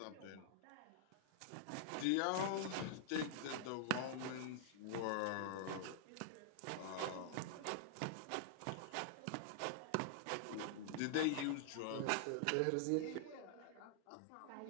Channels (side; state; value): both; different; correlation -0.01